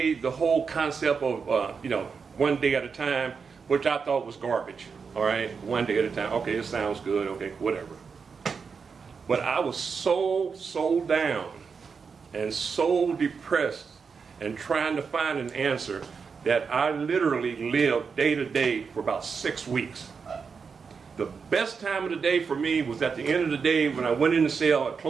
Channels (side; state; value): left; quieter; 5.6 dB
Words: the whole concept of, one day at a time, which I thought was garbage. All right, one day at a time. Okay, it sounds good. Okay, whatever. But I was so down and so depressed and trying to find an answer that I literally lived day to day for about 6 weeks. The best time of the day for me was at the end of the day when I went in the cell, I